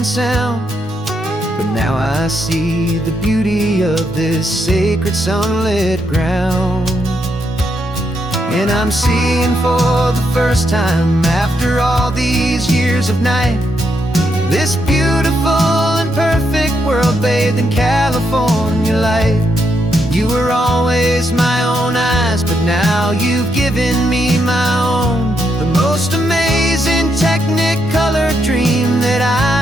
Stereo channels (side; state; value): both; normal; correlation 0.79